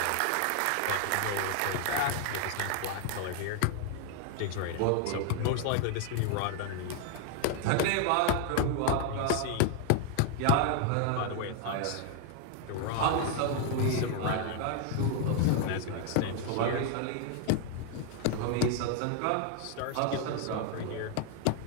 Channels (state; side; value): different; both; correlation 0.01